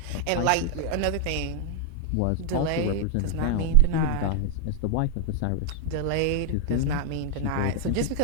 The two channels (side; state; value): both; different; correlation 0.00